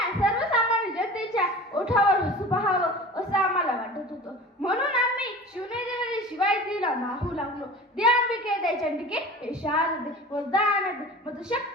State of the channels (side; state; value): both; normal; correlation 0.38